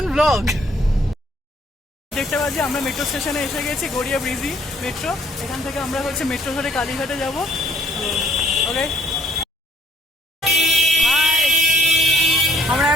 ব্লগ। দেখতে পাচ্ছি আমরা মেট্রো স্টেশনে এসে গেছি, গড়িয়া ব্রিজি মেট্রো। এখান থেকে আমরা হচ্ছে মেট্রো ধরে কালীঘাটে যাব। ওকে, আমরা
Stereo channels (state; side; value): normal; both; correlation 0.63